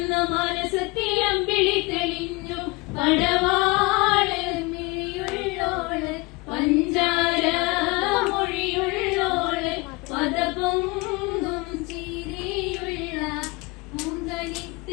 മാനസത്തിൽ അമ്പിളി തെളിഞ്ഞു പടവാള് മിഴിയുള്ളോള് പഞ്ചാര മൊഴിയുള്ളോള് പദപൊങ്കും ചിരിയുള്ള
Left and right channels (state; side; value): quieter; right; 25.8 dB